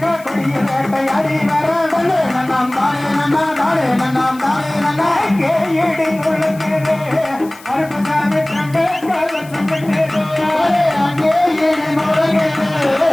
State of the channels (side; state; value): left; noise; hiss, 22 dB below the sound